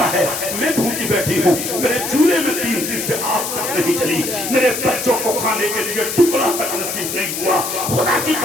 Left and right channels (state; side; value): noise; left; hiss, 4 dB below the sound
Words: ہے، میں بھوکی بیٹھی ہوں، میرے چولہے میں 3 دن سے آگ تک نہیں چلی، میرے بچوں کو کھانے کے لیے ٹکڑا تک نصیب نہیں ہوا، خدا کی